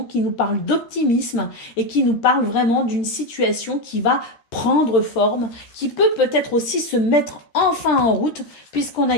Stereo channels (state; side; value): late; right; 13 ms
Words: qui nous parle d'optimisme et qui nous parle vraiment d'une situation qui va prendre forme, qui peut peut-être aussi se mettre enfin en route, puisqu'on a